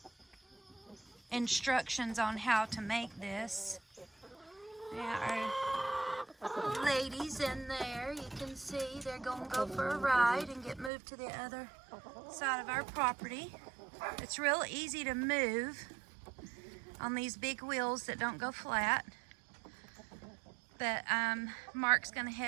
instructions on how to make this. Yeah, our ladies in there, you can see they're gonna go for a ride and get moved to the other side of our property. It's real easy to move on these big wheels that don't go flat. But Mark's gonna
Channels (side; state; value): left; drops out; at 10.9 s